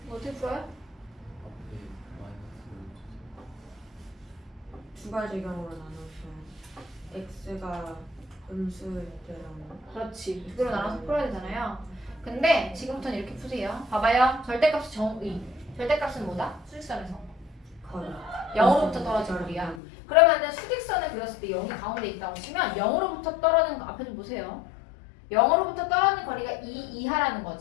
이거 어떻게 풀어요? 두 가지 경우로 나누시면 x가 음수일 때랑 그렇지. 두 개로 나눠서 풀어야 되잖아요. 근데 지금부터는 이렇게 푸세요. 봐봐요. 절대값이 정의. 절대값은 뭐다? 수직선에서. 거의 0으로부터 떨어진 거리야. 그러면은 수직선을 그렸을 때 0이 가운데 있다고 치면 0으로부터 떨어지는 거 앞에 좀 보세요. 0으로부터 떨어지는 거리가 2 이하라는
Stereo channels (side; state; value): right; drops out; at 19.8 s